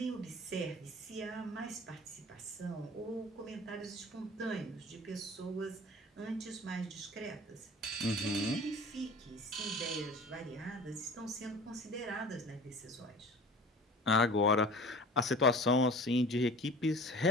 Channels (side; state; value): both; normal; correlation 0.41